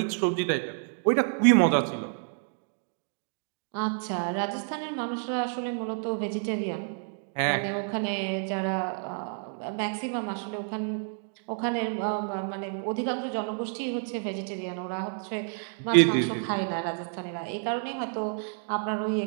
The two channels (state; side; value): silent; left; 58 dB below the other